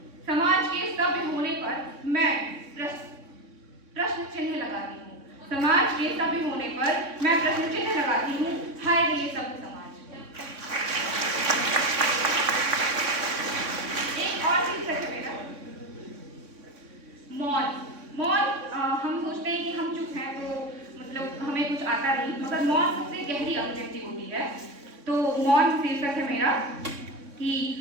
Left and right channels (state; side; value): late; left; 3.6 ms